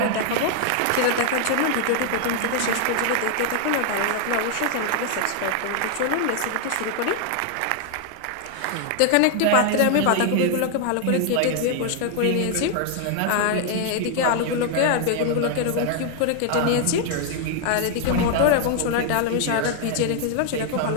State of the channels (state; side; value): different; both; correlation 0.00